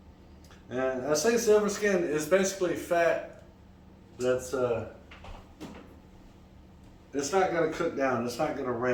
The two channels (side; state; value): both; identical; correlation 1.00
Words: And I say silver skin is basically fat that's it's not going to cook down, it's not going to